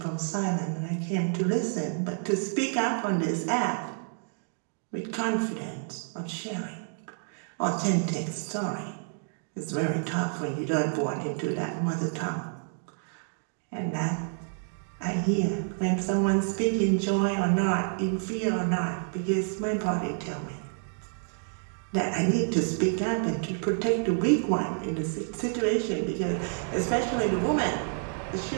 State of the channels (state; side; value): silent; left; 59 dB below the other